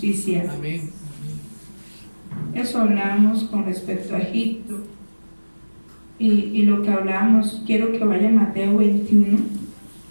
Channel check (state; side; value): inverted; both; correlation -1.00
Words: Amén. Eso hablábamos con respecto a Egipto. Y lo que hablábamos, quiero que vaya a Mateo 21